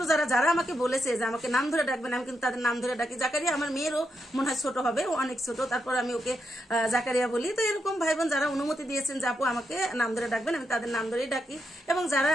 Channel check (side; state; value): both; normal; correlation 0.83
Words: যারা যারা আমাকে বলেছে যে আমাকে নাম ধরে ডাকবেন, আমি কিন্তু তাদের নাম ধরে ডাকি। জাকারিয়া আমার মেয়েরও মনে হয় ছোট হবে, ও অনেক ছোট, তারপর আমি ওকে জাকারিয়া বলি। তো এরকম ভাই বোন যারা অনুমতি দিয়েছেন যে আপু আমাকে নাম ধরে ডাকবেন, আমি তাদের নাম ধরেই ডাকি। এবং যারা